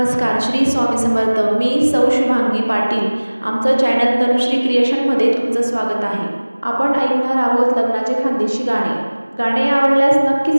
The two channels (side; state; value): both; inverted; correlation -1.00